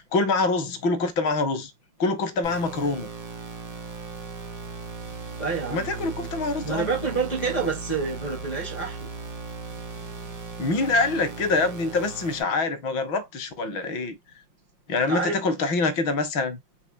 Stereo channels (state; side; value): late; right; 5.7 ms